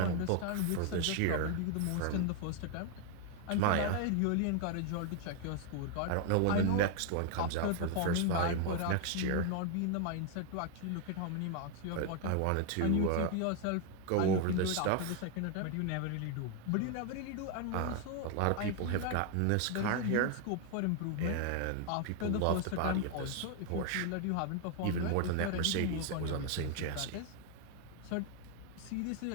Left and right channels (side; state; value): both; different; correlation 0.00